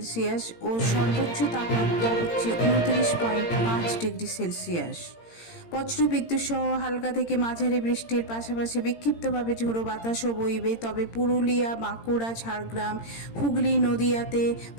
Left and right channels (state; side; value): late; right; 17 ms